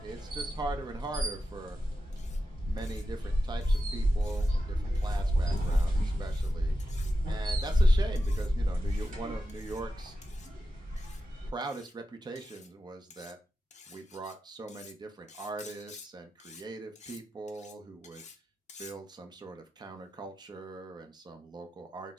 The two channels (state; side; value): normal; both; correlation 0.90